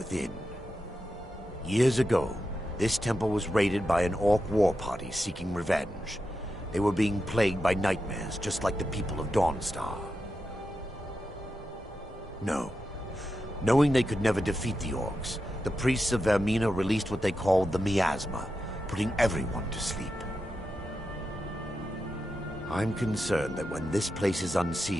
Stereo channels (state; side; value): normal; both; correlation 0.88